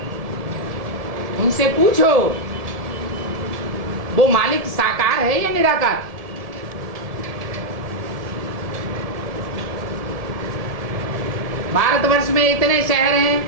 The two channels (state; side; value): late; left; 1.7 ms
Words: उनसे पूछो वो मालिक साकार है या निराकार? भारतवर्ष में इतने शहर हैं,